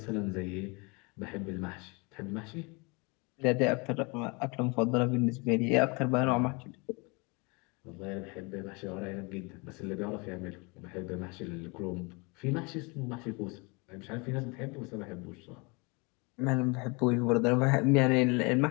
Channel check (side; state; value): right; quieter; 29.0 dB